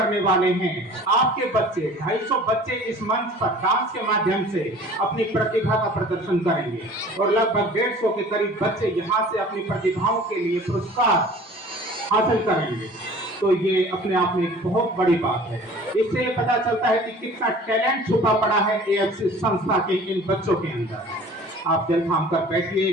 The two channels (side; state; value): both; normal; correlation 0.46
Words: वाले हैं। आपके बच्चे 250 बच्चे इस मंच पर डांस के माध्यम से अपनी प्रतिभा का प्रदर्शन करेंगे और लगभग 150 के करीब बच्चे यहाँ से अपनी प्रतिभाओं के लिए पुरस्कार हासिल करेंगे। तो ये अपने आप में एक बहुत बड़ी बात है। इससे पता चलता है कि कितना टैलेंट छुपा पड़ा है एएफसी संस्था के इन बच्चों के अंदर। आप दिल थाम कर बैठिए,